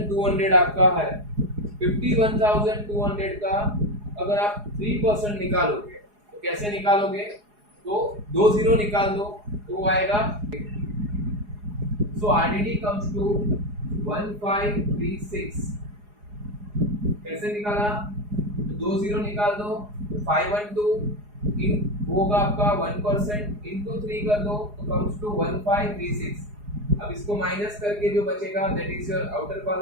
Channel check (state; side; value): late; left; 4.8 ms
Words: आपका है, 51,200 का अगर आप 3% निकालोगे तो कैसे निकालोगे, तो 2 जीरो निकाल दो तो आएगा। सो आरडीडी कम्स टू 1536। कैसे निकाला, तो 2 जीरो निकाल दो, 512 इन होगा आपका 1% इंटू 3 कर दो तो कम्स टू 1536। अब इसको माइनस करके जो बचेगा that is your outer